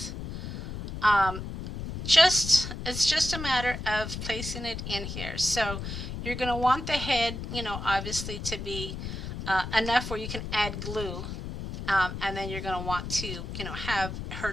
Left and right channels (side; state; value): left; noise; rumble, 7 dB below the sound